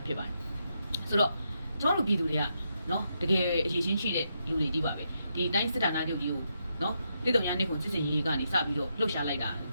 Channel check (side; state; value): both; inverted; correlation -0.81